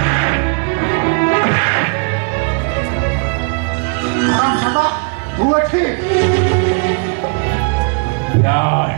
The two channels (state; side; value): quieter; left; 37.4 dB